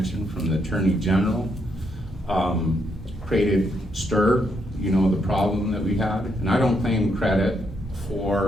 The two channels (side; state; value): both; normal; correlation 0.77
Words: from the Attorney General, created STIR, the problem that we had. And I don't claim credit